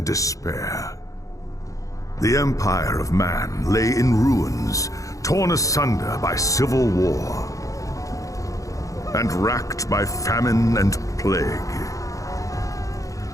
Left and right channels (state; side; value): late; right; 0.16 ms